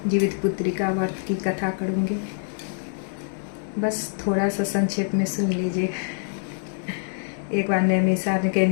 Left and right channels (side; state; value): right; silent; 62 dB below the other